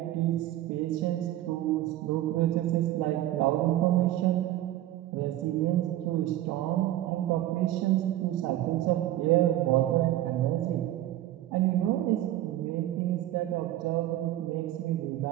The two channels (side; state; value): left; quieter; 13.9 dB